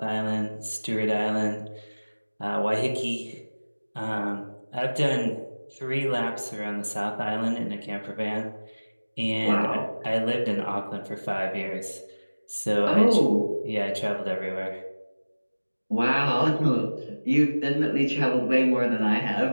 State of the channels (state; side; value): inverted; both; correlation -1.00